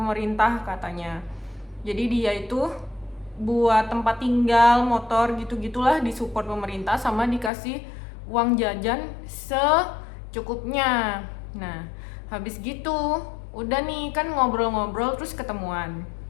katanya. Jadi dia itu buat tempat tinggal, motor gitu-gitulah disupport pemerintah, sama dikasih uang jajan secukupnya. Nah, habis gitu udah nih kan ngobrol-ngobrol, terus ketemuan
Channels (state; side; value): drops out; right; at 7.5 s